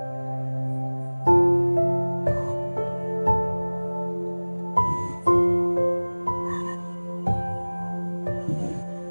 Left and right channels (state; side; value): inverted; both; correlation -1.00